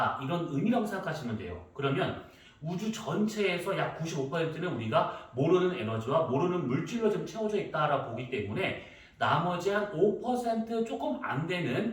이런 의미라고 생각하시면 돼요. 그러면 우주 전체에서 약 95%는 우리가 모르는 에너지와 모르는 물질로 좀 채워져 있다라고 보기 때문에 나머지 한 5% 조금 안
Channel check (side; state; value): both; identical; correlation 1.00